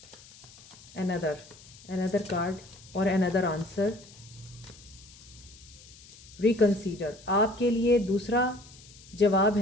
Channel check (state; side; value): noise; left; hiss, 21 dB below the sound